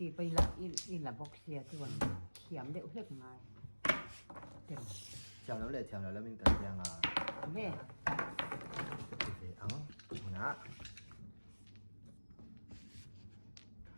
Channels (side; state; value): both; inverted; correlation -1.00